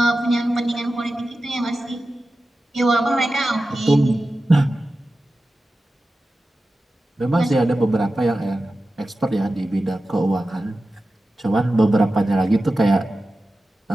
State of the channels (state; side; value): normal; both; correlation 0.94